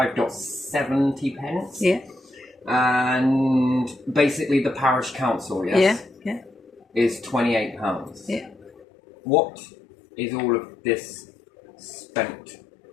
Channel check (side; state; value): right; drops out; at 8.8 s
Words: pence. Yeah. And basically the parish council, yes? Yeah. Is £28. Yeah. What is all of this spent